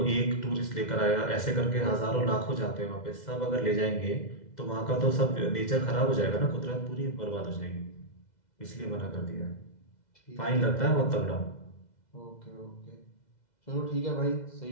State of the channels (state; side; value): late; right; 2.0 ms